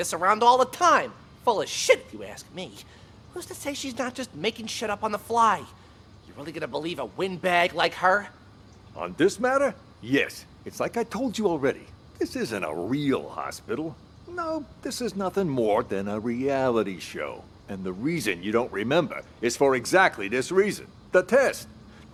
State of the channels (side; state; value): both; identical; correlation 1.00